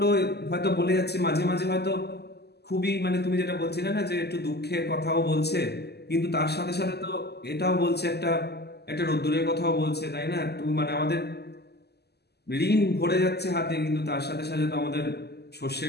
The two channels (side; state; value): right; late; 0.47 ms